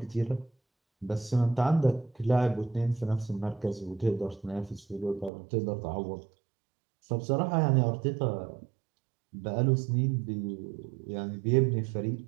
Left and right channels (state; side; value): drops out; left; at 5.3 s